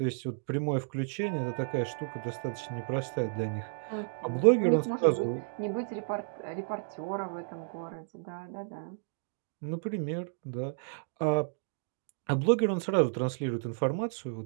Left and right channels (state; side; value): silent; left; digital silence